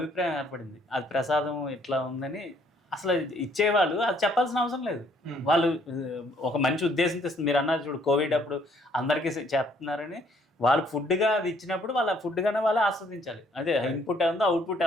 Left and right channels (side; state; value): both; normal; correlation 0.64